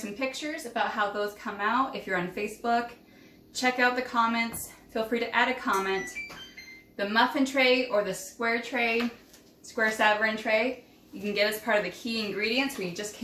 pictures about how those come out. If you're on Facebook, check out the comments. Feel free to add a comment. The muffin tray or the square tray, square Savarin tray, you can get as part of the key ingredients. We just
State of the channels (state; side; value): identical; both; correlation 1.00